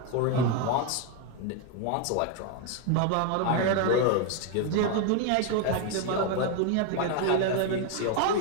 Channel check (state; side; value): different; both; correlation 0.01